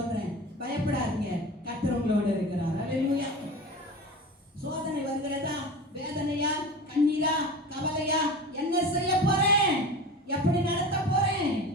பயப்படாதீங்க, கர்த்தர் உங்களோடு இருக்கிறார். அல்லேலூயா. சோதனை வருகிறதா, வேதனையா, கண்ணீரா, கவலையா, என்ன செய்ய போறேன், எப்படி நடத்த போறேன்,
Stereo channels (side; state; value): both; normal; correlation 0.33